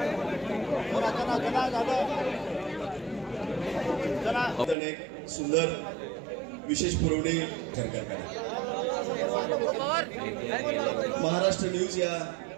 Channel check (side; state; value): left; drops out; at 4.8 s